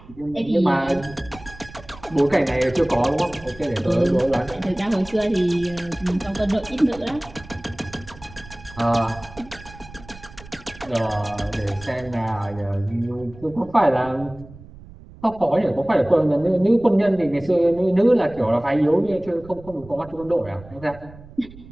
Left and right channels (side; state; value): right; noise; rumble, 19 dB below the sound